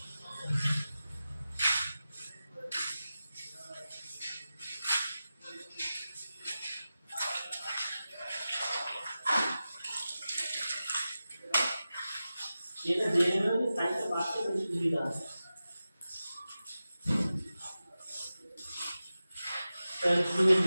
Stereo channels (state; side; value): inverted; both; correlation -0.94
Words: এটা দিয়ে দেবে, সাইডটা বাড়তে তো সুবিধা আছে। তাহলে তুমি